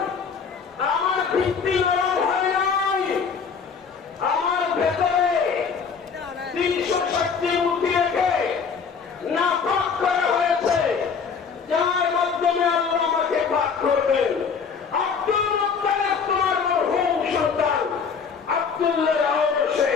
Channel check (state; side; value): quieter; right; 5.9 dB